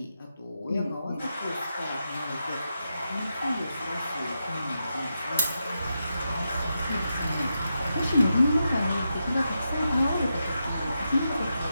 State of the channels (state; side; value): inverted; both; correlation -0.86